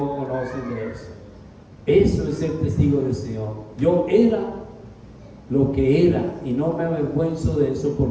conocen de eso. Eso es ser testigo del Señor. Yo era lo que era y no me avergüenzo de eso,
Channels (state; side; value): identical; both; correlation 1.00